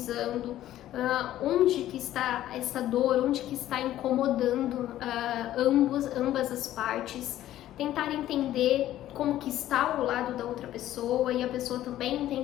onde que está essa dor, onde que está incomodando ambas as partes, tentar entender como que está o lado da outra pessoa e a pessoa também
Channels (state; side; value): quieter; right; 13.3 dB